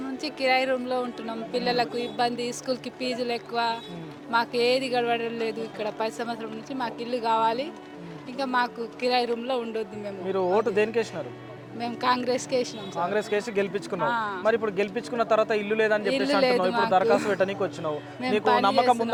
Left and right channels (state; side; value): identical; both; correlation 1.00